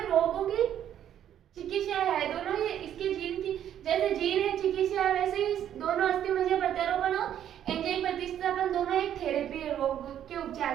रोगों की चिकित्सा है। दोनों ही इसके जीन की, जैसे जीन है चिकित्सा है, वैसे ही दोनों अस्थि मज्जा प्रत्यारोपण और एंजाइम प्रतिस्थापन दोनों एक थेरेपी है रोग के उपचार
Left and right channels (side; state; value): left; quieter; 10.4 dB